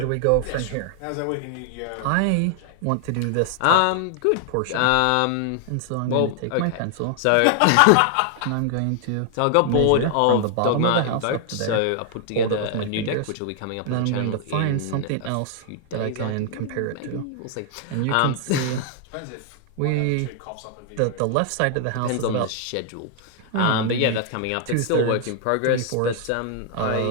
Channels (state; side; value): different; both; correlation 0.00